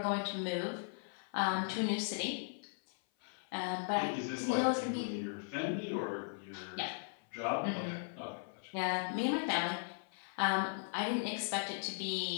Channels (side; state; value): right; silent; 53 dB below the other